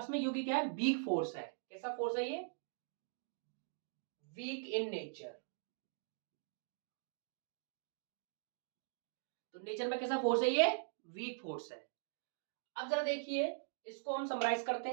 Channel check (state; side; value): silent; left; digital silence